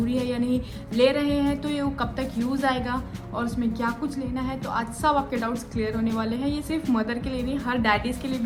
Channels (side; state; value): both; identical; correlation 1.00